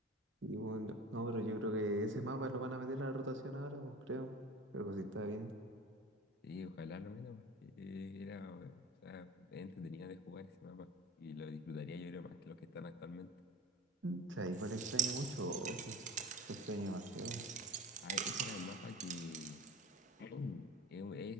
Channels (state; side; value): normal; both; correlation 0.36